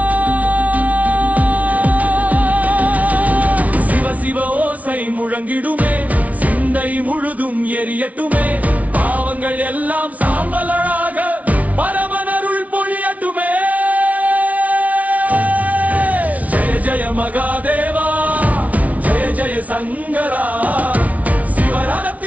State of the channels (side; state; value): left; late; 0.069 ms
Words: சிவ சிவ ஓசை முழங்கிடுமே, சிந்தை முழுதும் எரியட்டுமே. பாவங்கள் எல்லாம் சாம்பலாக பரமனருள் பொழியட்டுமே. ஜெய ஜெய மகாதேவா, ஜெய ஜெய சங்கரா.